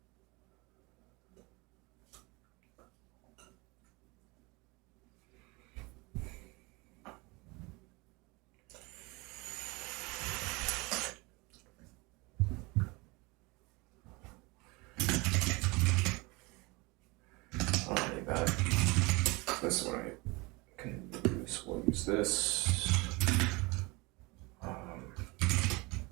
this is what I can use. We'll use this.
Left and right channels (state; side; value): quieter; left; 25.5 dB